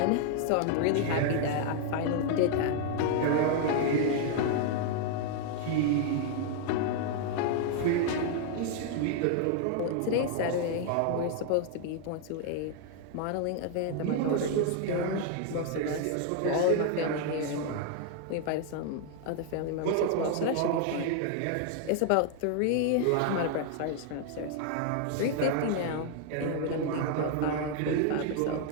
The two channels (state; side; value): different; both; correlation 0.00